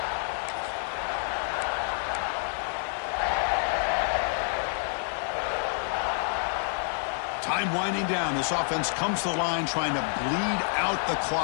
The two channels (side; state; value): right; silent; digital silence